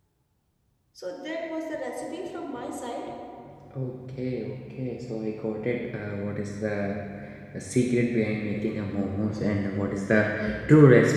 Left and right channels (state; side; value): identical; both; correlation 1.00